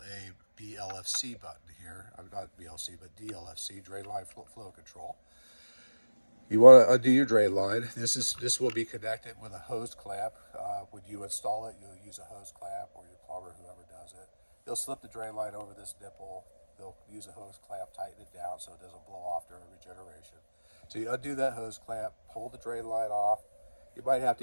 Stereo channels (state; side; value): inverted; both; correlation -1.00